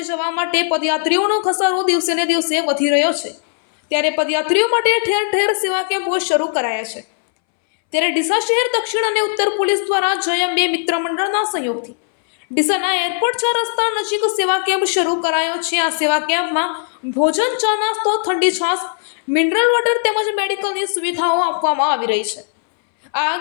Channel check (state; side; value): silent; right; 65 dB below the other